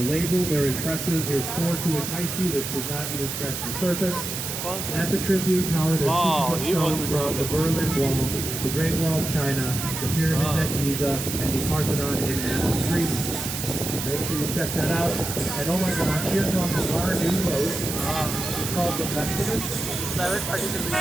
labeled, they're impressive, they're scored to entice you. This does not even scratch the surface. At the Tribune Tower, there's pieces of stone from the Berlin Wall, the Great Wall of China, the pyramids at Giza, and the Parthenon in Athens, Greece. Make sure you check that out. And oh my gosh, here comes our new boat. It's called the Festivus.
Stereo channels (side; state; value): right; noise; hiss, 5 dB below the sound